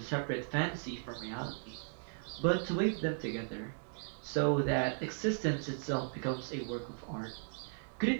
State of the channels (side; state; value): left; silent; 53 dB below the other